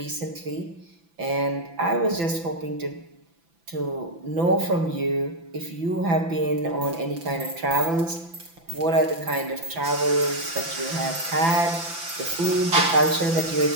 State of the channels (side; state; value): left; late; 6.0 ms